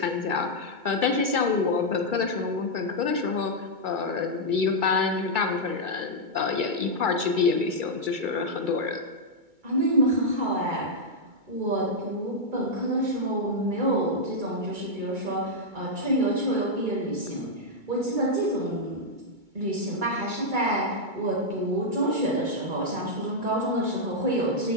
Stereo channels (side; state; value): left; late; 2.3 ms